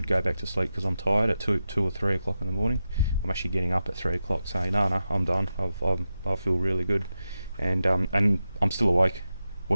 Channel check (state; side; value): inverted; both; correlation -0.90